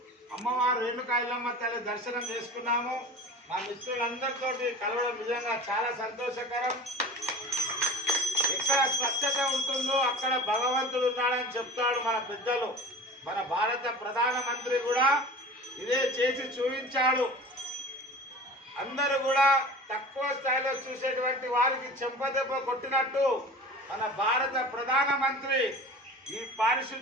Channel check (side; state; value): both; normal; correlation 0.37